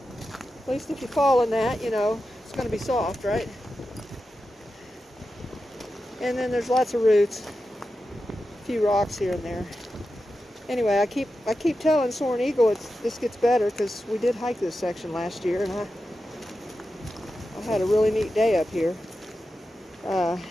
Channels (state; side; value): normal; both; correlation 0.91